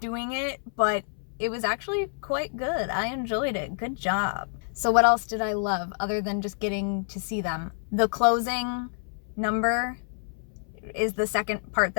it, but it was actually quite good. I enjoyed it. Good job. So what else did I love other than just getting to see them? The closing number is the second part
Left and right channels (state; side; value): silent; right; 60 dB below the other